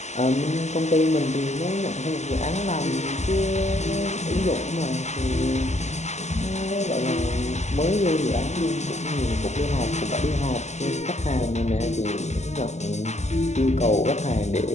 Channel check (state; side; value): late; right; 0.33 ms